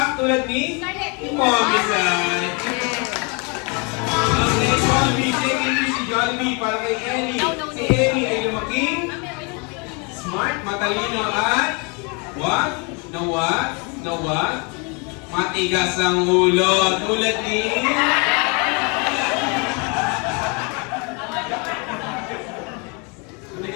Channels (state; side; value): quieter; right; 32.7 dB